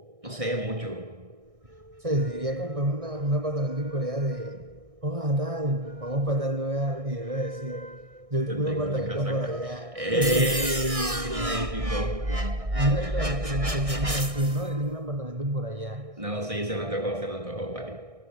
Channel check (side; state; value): left; late; 1.6 ms